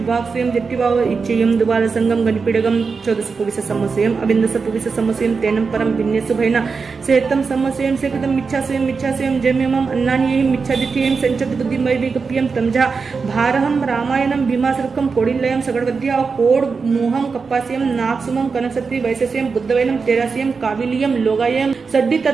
स्वयं दिट्टिवाव इच्छेयम द्वार संगम गणपिडगम चौदस पुविस समस्यम अबिंदस पुविस समस्यम तेनम परम भिन्नेसु भैना सेतम समस्यम सेकतम मिच्छास्वयम जम्यमम अन्नानियहिम मिच्छादित्यहिम संचत बुद्धिमय विगप्यम तमजा भारहम रामायणम भीमासुरकम कोडिलयम सगडवद्या कोड मोहम कप्पास्यम नागसुमम कनकसत्रि वैशस्यम बुद्धवैनम तेरास्यम काविलियम लोगायम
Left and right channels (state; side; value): quieter; left; 5.0 dB